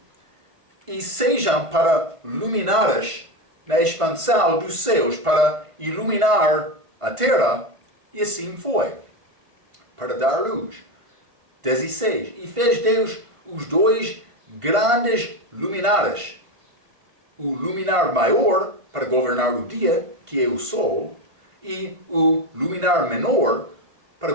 E sejam para luminares na expansão dos céus, para iluminar a terra, e assim foi, para dar luz. 16. E fez Deus os 2 grandes luminares, o luminar maior para governar o dia, que é o sol, e o luminar menor para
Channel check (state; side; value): late; left; 1.5 ms